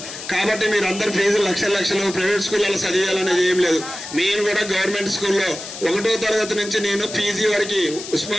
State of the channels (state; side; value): noise; left; hiss, 11 dB below the sound